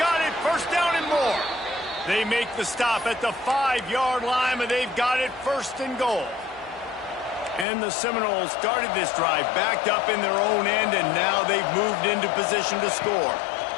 got it, 1st down and more. They make the stop at the 5-yard line, and they've got it 1st and goal. And the Seminoles started this drive backed up in their own end, and now they've moved into position to score.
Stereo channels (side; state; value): right; drops out; at 7.7 s